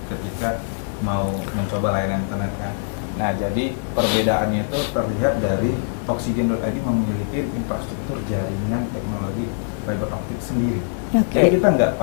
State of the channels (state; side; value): silent; right; 60 dB below the other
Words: ketika mau mencoba layanan internet kan. Nah, jadi perbedaannya itu terlihat dari Oksigen.id memiliki infrastruktur jaringan teknologi fiber optik sendiri. Oke. Jadi kita nggak